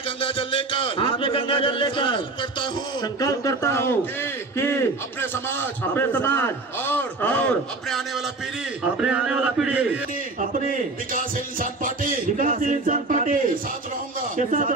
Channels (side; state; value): left; quieter; 3.4 dB